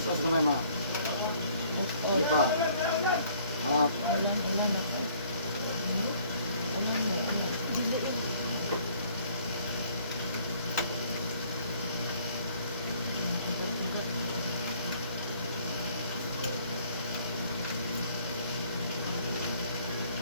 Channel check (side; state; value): both; inverted; correlation -0.59